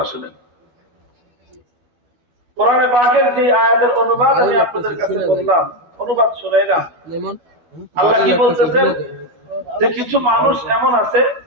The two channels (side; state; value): left; late; 12 ms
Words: শুনেন। কোরআনে পাকের যে আয়াতের অনুবাদ আমি আপনাদের কাছে বললাম, অনুবাদ শুনাইলাম। আল্লাহ কি বলতেছেন যে কিছু মানুষ এমন আছে